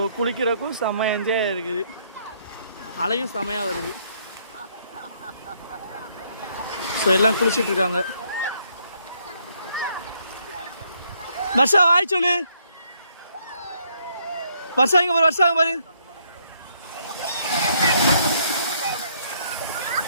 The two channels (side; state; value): both; inverted; correlation -0.69